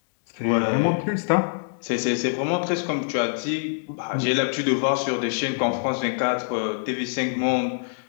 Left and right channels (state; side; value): silent; right; digital silence